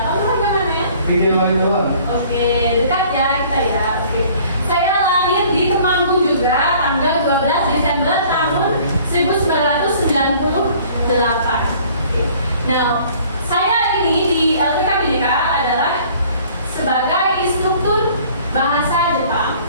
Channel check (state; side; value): inverted; both; correlation -0.53